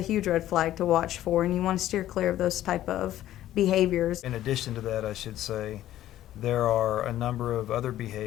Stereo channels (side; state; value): right; quieter; 13.2 dB